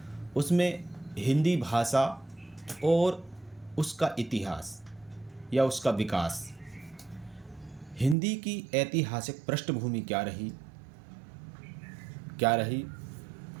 उसमें हिंदी भाषा और उसका इतिहास या उसका विकास, हिंदी की ऐतिहासिक पृष्ठभूमि क्या रही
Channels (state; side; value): drops out; left; at 8.2 s